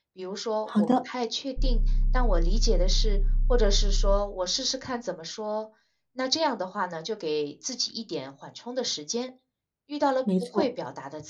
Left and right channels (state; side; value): identical; both; correlation 1.00